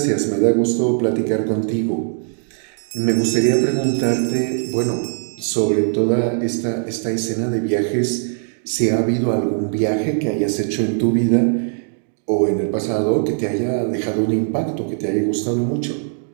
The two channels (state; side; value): silent; left; digital silence